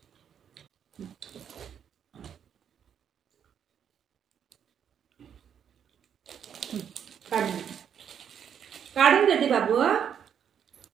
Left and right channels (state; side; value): quieter; left; 8.4 dB